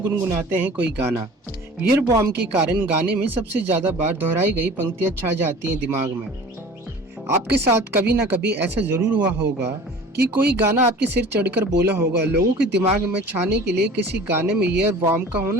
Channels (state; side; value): normal; both; correlation 0.43